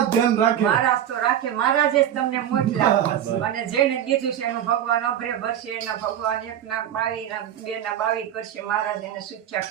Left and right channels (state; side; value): quieter; left; 10.5 dB